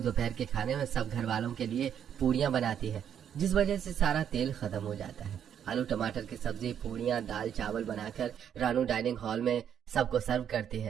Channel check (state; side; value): quieter; left; 8.9 dB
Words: के खाने में सब घर वालों के लिए पूरियां बनाती है, जिस वजह से सारा तेल खत्म हो जाता है। आलू टमाटर की सब्जी, पूरियां, दाल चावल बनाकर रानू डाइनिंग हॉल में सबको सर्व करती